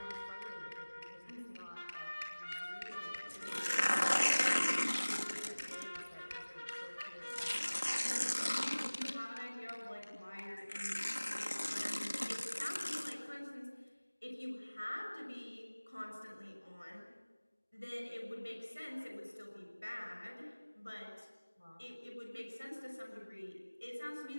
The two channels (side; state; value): both; inverted; correlation -1.00